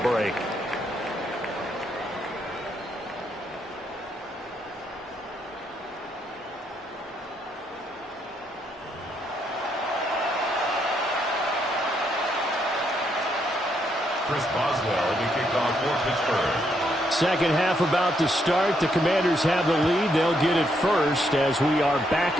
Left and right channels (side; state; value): both; normal; correlation 0.76